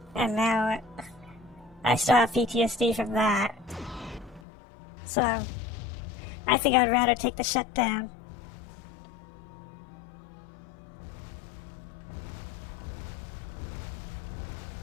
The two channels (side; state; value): right; drops out; at 4.4 s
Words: And now I still have PTSD from that. So I think I'd rather take the shutdown.